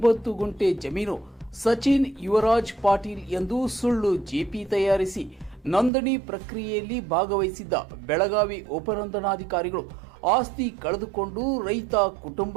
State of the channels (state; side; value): drops out; left; at 5.9 s